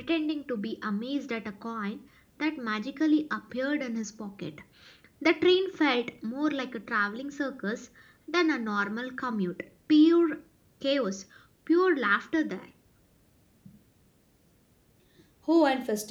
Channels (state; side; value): identical; both; correlation 1.00